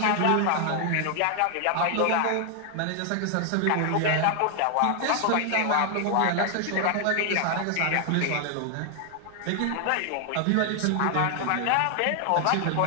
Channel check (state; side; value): different; both; correlation 0.00